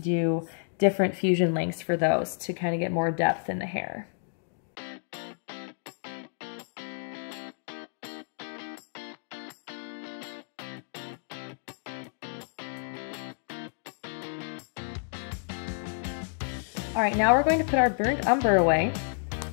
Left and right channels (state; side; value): silent; right; digital silence